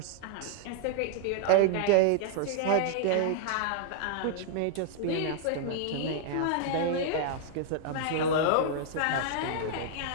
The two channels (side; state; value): both; different; correlation -0.01